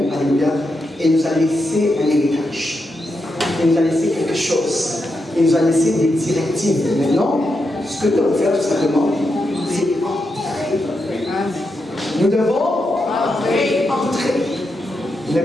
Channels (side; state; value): both; normal; correlation 0.85